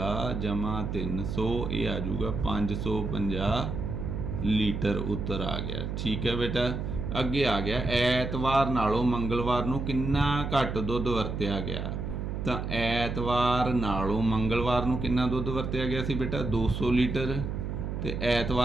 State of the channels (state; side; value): noise; right; hum, 4 dB below the sound